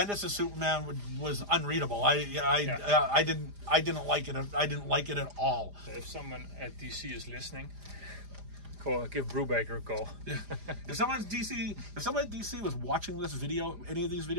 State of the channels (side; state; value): left; late; 4.9 ms